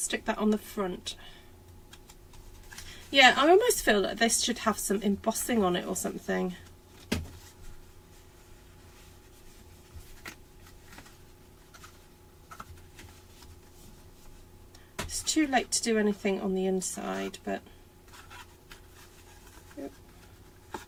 that on the front. Yeah, I almost feel like this should have some embossing on it or something. It's too late to do anything on the inside, but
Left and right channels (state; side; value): identical; both; correlation 1.00